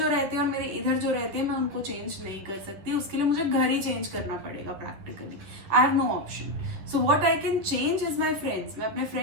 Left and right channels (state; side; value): late; left; 11 ms